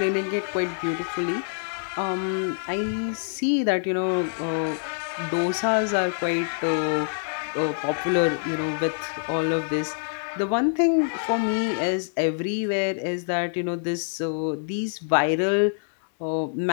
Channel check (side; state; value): right; silent; digital silence